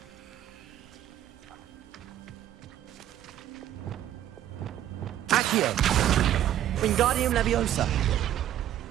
Accio! Wingardium Leviosa!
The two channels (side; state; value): left; quieter; 11.8 dB